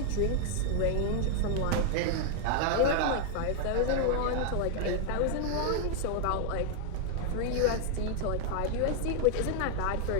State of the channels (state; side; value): different; both; correlation 0.00